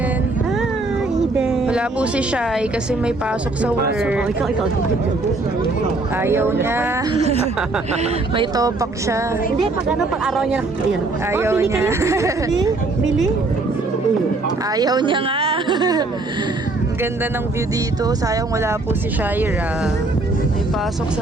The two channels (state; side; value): quieter; left; 3.2 dB